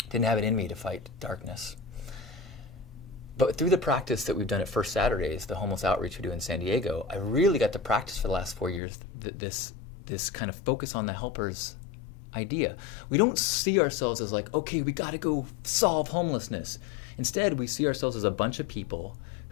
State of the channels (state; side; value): drops out; right; at 8.8 s